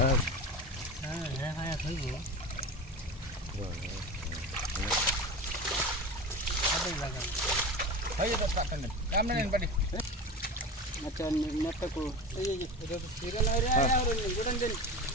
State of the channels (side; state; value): both; normal; correlation 0.29